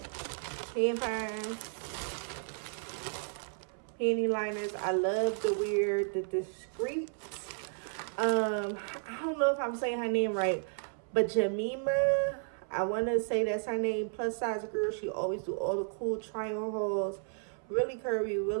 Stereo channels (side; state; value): left; silent; 56 dB below the other